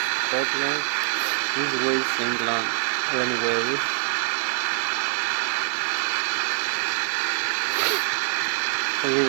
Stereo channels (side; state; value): left; silent; 58 dB below the other